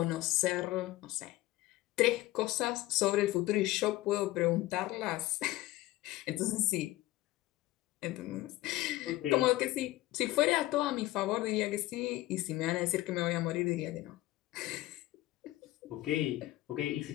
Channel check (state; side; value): quieter; right; 17.5 dB